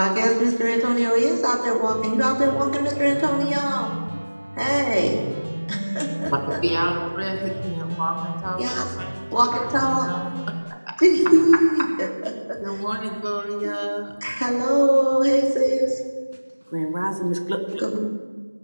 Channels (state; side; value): inverted; both; correlation -1.00